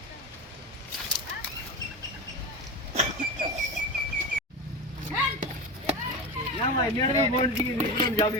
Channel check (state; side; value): normal; both; correlation 0.24